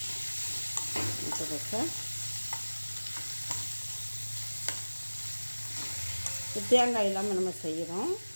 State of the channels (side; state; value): both; inverted; correlation -1.00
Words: முட்டைக்கோசை தேங்காய் இல்லாமல் நம்ம செய்கிறோம்.